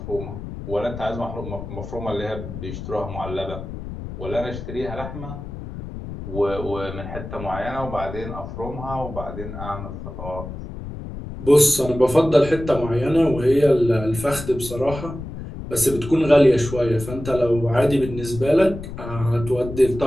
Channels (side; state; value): left; noise; rumble, 10 dB below the sound